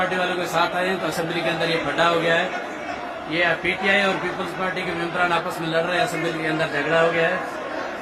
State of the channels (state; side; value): identical; both; correlation 1.00